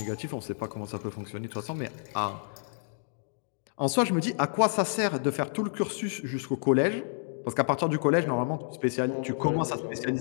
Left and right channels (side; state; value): right; silent; digital silence